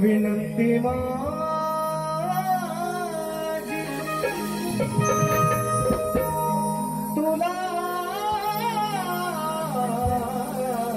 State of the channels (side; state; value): both; identical; correlation 1.00